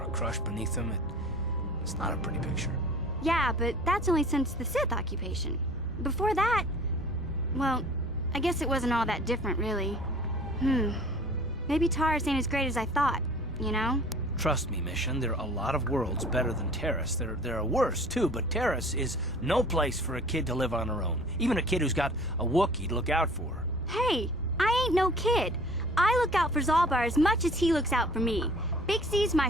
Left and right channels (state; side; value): normal; both; correlation 0.47